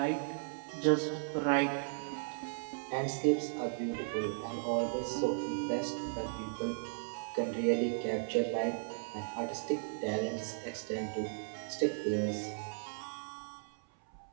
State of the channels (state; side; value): silent; left; 54 dB below the other